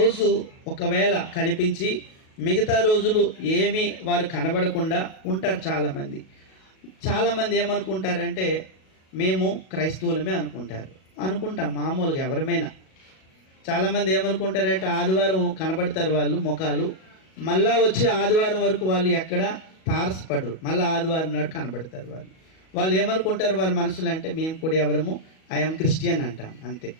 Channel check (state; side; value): late; right; 37 ms